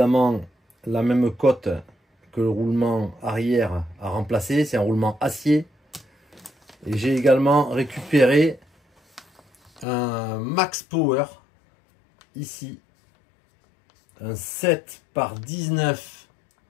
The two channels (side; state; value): right; drops out; at 9.9 s